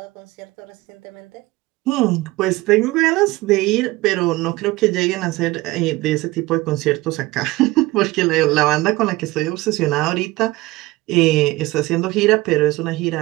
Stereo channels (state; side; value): quieter; left; 20.1 dB